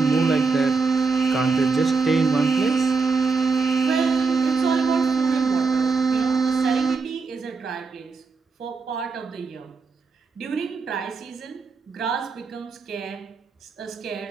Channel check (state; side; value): quieter; left; 4.5 dB